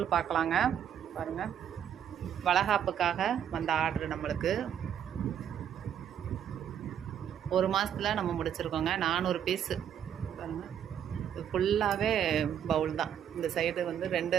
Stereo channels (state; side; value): quieter; left; 9.2 dB